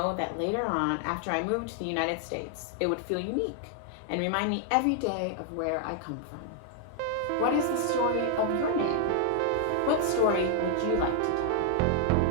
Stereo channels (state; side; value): different; both; correlation 0.00